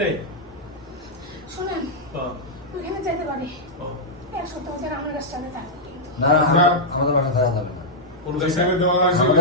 নেই? শুনেন, ওইখানে যেতে পারি, এক সপ্তাহ ধরে আমার কাছে থাকবে কিন্তু। না আমাদের বাসা থাকা যাবে না। কোন কাছে? এখানে দেওয়া আছে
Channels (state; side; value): normal; both; correlation -0.08